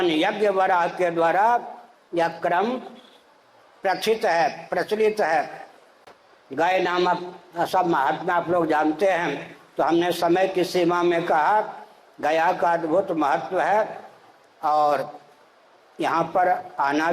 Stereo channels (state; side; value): identical; both; correlation 1.00